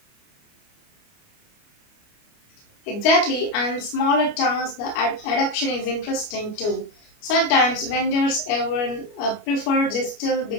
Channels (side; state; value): right; late; 29 ms